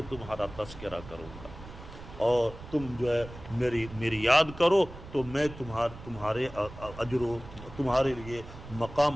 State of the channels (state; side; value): noise; right; rumble, 15 dB below the sound